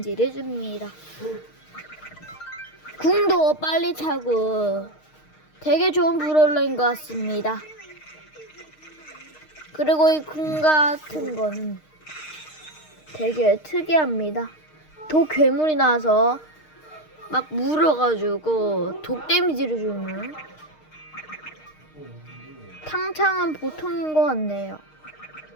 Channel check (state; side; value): late; right; 6.5 ms